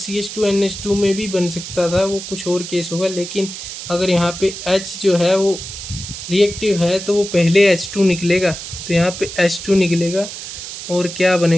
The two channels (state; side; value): noise; right; hiss, 9 dB below the sound